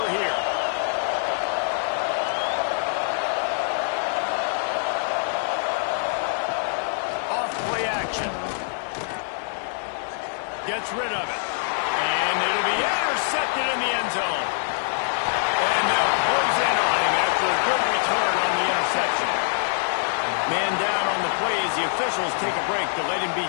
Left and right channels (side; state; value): right; silent; digital silence